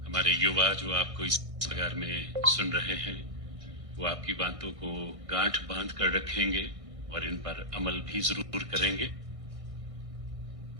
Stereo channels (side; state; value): left; late; 1.6 ms